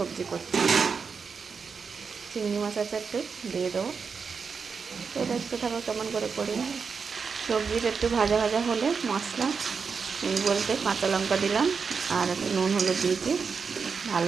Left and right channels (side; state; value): left; quieter; 5.6 dB